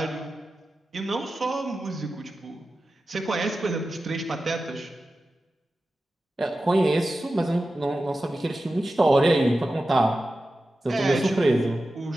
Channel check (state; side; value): normal; both; correlation 0.93